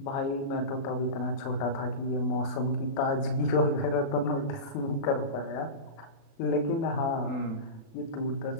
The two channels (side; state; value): right; late; 36 ms